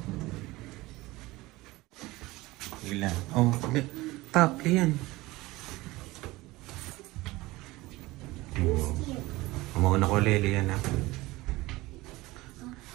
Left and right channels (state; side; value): quieter; left; 20.0 dB